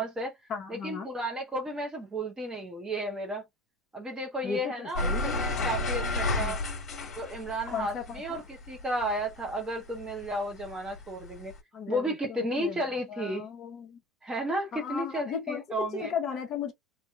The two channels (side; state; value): both; normal; correlation 0.34